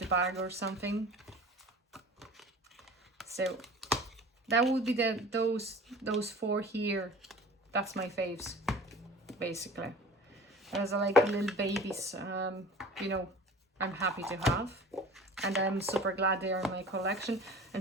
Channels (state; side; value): normal; both; correlation 0.41